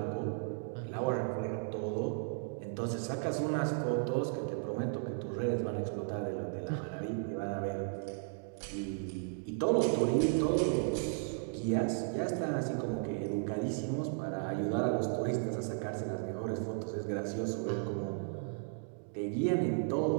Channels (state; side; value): silent; left; digital silence